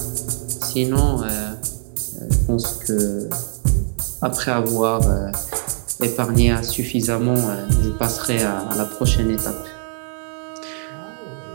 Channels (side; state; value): left; silent; digital silence